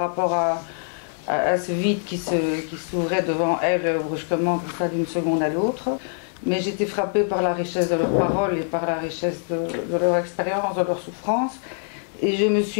à ce vide qui s'ouvrait devant elles brusquement comme ça d'une seconde à l'autre. Mais j'étais frappée par la richesse de leurs paroles et par la richesse de leur expérience, de leur souffrance. Et je me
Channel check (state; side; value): silent; right; 63 dB below the other